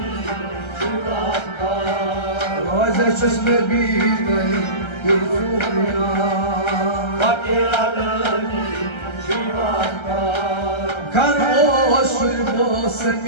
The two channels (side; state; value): right; late; 1.3 ms